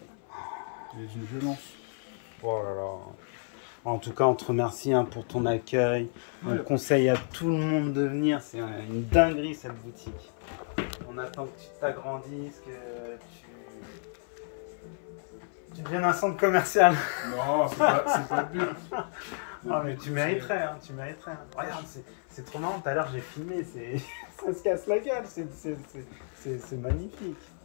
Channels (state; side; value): silent; right; 57 dB below the other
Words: Elle est d'une violence. Oh là là. En tout cas, on te remercie hein, pour ton accueil. Ouais. On conseille à tout le monde de venir. C'est une dinguerie cette boutique. On attend que tu t'agrandisses, que tu deviennes un centre commercial. Non, c'est pas le but. Ah, mais tu mériterais, hein, tu mériterais. Hein. Regarde, c'est trop marrant. Tout à l'heure, j'ai filmé. Ça se casse la gueule. C'est magnifique.